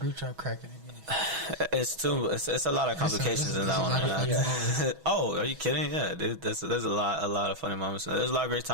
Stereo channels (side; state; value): left; late; 6.1 ms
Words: chat cracking again. It's a lot of complications in that one. Oh, are you kidding? Yeah, dude, there's a lot of funny moments. There's a lot of great